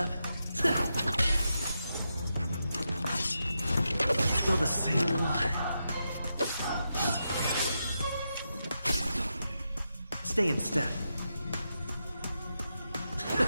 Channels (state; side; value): inverted; both; correlation -0.86